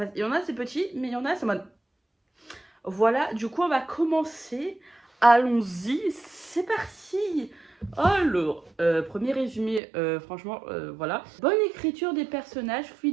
Il y en a, c'est petit, mais il y en a, c'est en mode. Voilà, du coup, on va commencer. Allons-y, c'est parti. Alors, premier résumé, franchement, voilà. Bonne écriture des personnages,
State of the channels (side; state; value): left; drops out; at 9.8 s